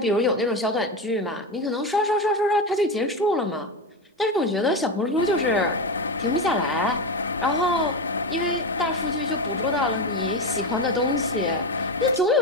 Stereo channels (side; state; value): both; normal; correlation 0.16